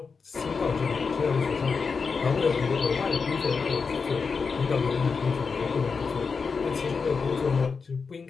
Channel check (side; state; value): right; quieter; 5.1 dB